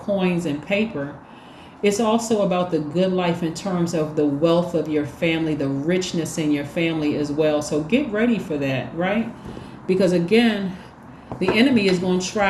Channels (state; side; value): identical; both; correlation 1.00